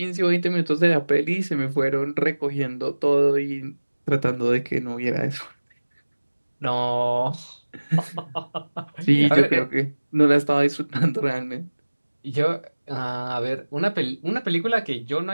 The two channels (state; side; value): inverted; both; correlation -1.00